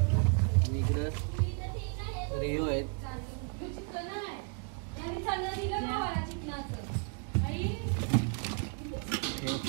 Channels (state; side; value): quieter; left; 39.9 dB